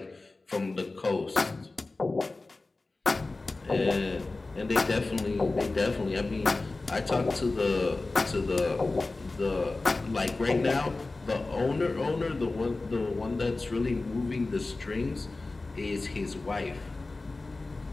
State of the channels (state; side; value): quieter; right; 3.3 dB